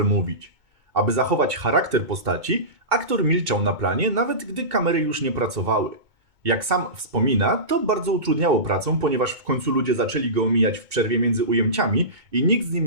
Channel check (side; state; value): left; late; 2.2 ms